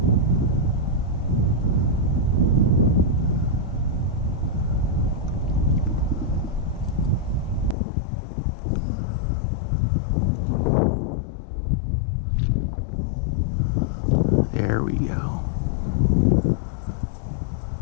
There we go.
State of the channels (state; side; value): drops out; right; at 7.8 s